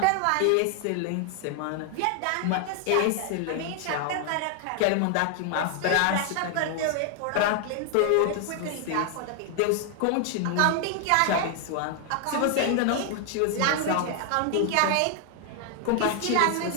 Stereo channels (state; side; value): different; both; correlation 0.00